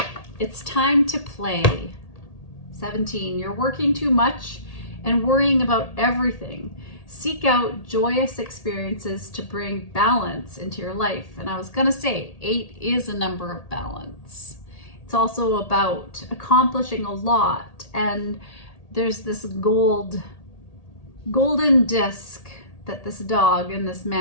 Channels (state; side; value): late; right; 1.8 ms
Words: It's time to play. 17, you're working too much and worrying about everything. Seek out joyous experiences to bring balance into your life. And I was going to say, 8 is a number of balance. It's also about accomplishing a lot. And there's this golden disc that this dog and this